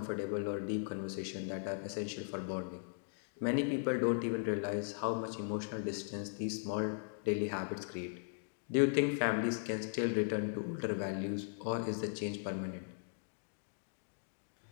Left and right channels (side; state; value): right; silent; digital silence